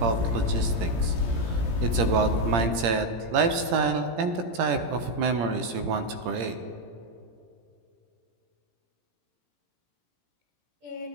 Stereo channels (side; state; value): left; late; 17 ms